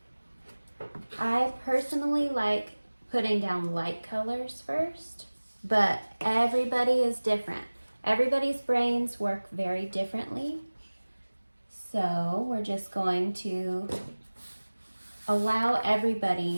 I personally like putting down light colors first, but everybody is different. Everybody's brains work very differently. So we're just going to allow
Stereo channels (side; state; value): both; inverted; correlation -1.00